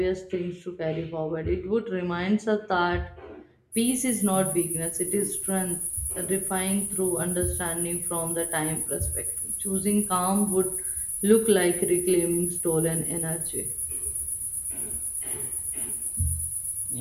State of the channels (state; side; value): identical; both; correlation 1.00